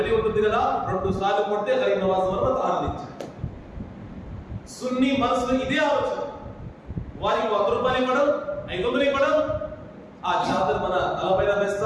ఉంటుంది కదా, 2 సార్లు కొడితే గరీబ్ నవాజ్ మనం ఆనందించాలి. సున్నీ మనసులో ఇదే ఆలోచన. వారికి 100 రూపాయలు ఇవ్వడం, 500 ఇవ్వడం, ఆ చాదర్ మన తలపైన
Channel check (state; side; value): identical; both; correlation 1.00